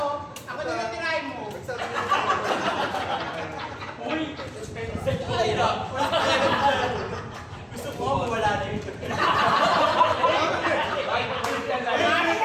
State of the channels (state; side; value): identical; both; correlation 1.00